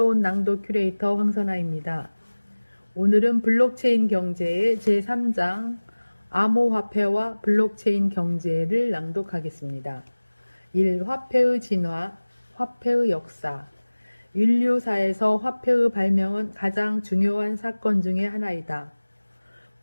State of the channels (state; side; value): inverted; both; correlation -1.00